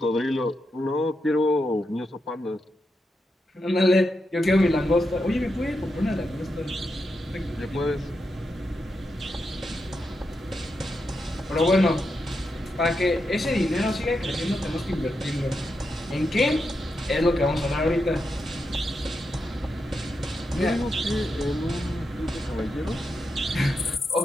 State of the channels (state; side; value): normal; both; correlation 0.86